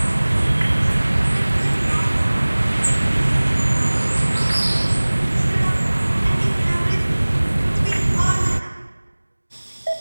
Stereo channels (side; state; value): both; inverted; correlation -1.00